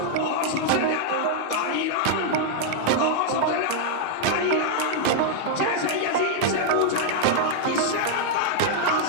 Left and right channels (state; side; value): different; both; correlation -0.01